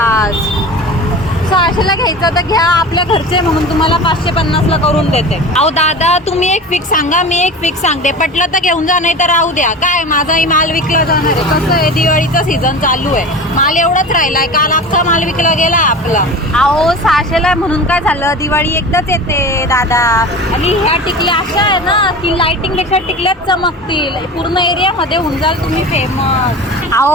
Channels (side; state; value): both; normal; correlation 0.33